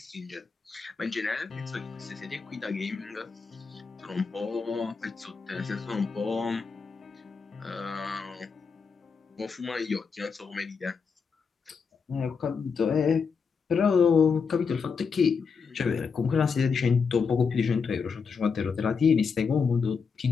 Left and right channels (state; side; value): quieter; right; 5.5 dB